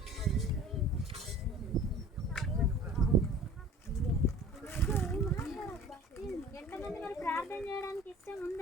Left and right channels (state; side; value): normal; both; correlation 0.45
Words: ఎంతమంది మరి ప్రార్థన చేయడానికి ఇష్టం